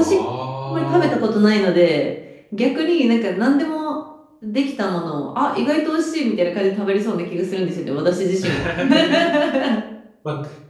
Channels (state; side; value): identical; both; correlation 1.00